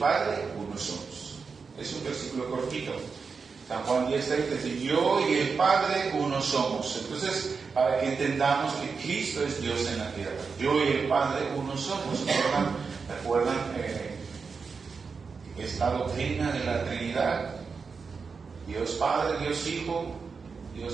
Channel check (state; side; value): quieter; left; 5.2 dB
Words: uno somos. Es un versículo cortito. San Juan 10:30 dice: yo y el Padre uno somos. Entonces, para que entendamos que Cristo es Dios en la tierra, yo y el Padre uno somos. esta doctrina de la Trinidad. Dios Padre, Dios Hijo,